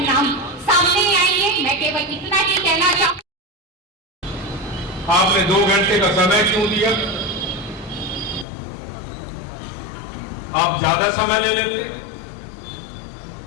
सामने आएंगे। मैं केवल इतना ही कहना चाहूँ। आपने 2 घंटे का समय क्यों दिया? आप ज्यादा समय ले लेते।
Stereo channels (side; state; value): right; drops out; at 8.5 s